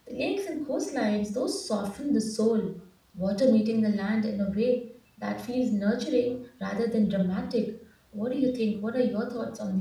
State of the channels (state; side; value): identical; both; correlation 1.00